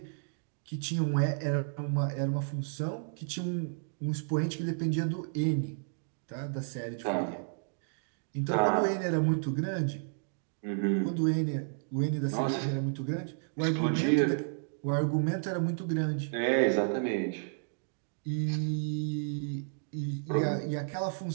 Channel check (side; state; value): left; silent; digital silence